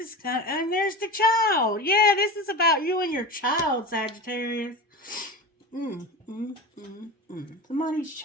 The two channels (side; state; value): both; normal; correlation 0.27